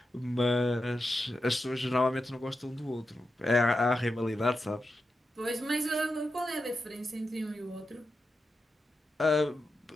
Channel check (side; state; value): both; normal; correlation 0.89